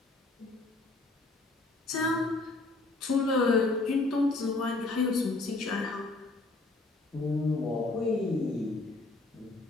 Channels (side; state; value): right; quieter; 3.2 dB